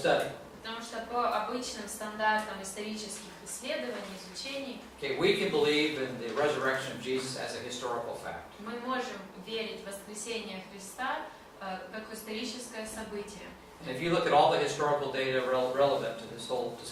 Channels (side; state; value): both; identical; correlation 1.00